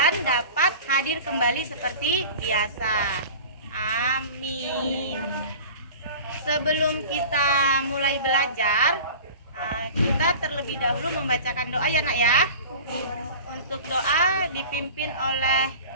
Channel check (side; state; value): both; inverted; correlation -0.38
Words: dapat hadir kembali seperti biasa. Amin. Sebelum kita mulai belajar, kita terlebih dahulu membacakan doa ya Nak ya. Untuk doa dipimpin oleh